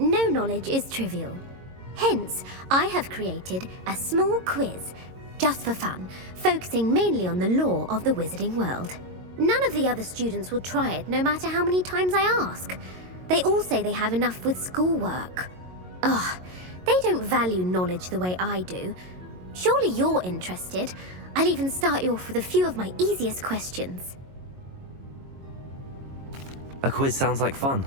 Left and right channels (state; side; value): late; left; 22 ms